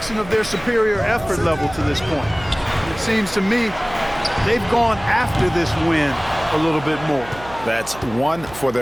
of their superior effort level to this point. It seems to me they've gone after this win a little bit more. That's 1 for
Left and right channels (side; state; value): right; noise; hum, 17 dB below the sound